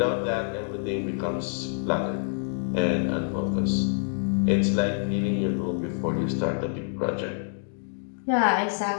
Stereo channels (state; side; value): silent; right; digital silence